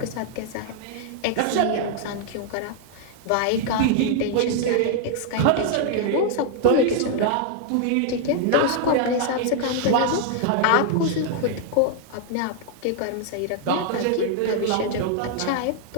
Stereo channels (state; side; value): different; both; correlation 0.00